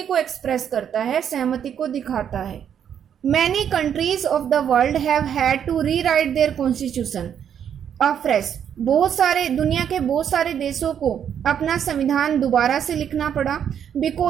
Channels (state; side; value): quieter; left; 8.7 dB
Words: को एक्सप्रेस करता है, सहमति को दिखाता है। Many countries of the world have had to rewrite their constitution afresh, बहुत सारे दुनिया के बहुत सारे देशों को अपना संविधान दोबारा से लिखना पड़ा,